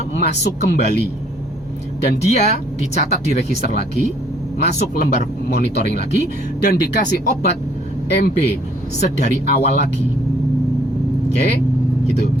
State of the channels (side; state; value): both; normal; correlation 0.62